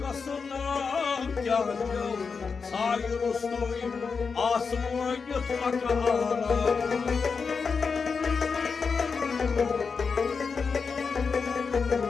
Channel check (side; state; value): right; quieter; 5.3 dB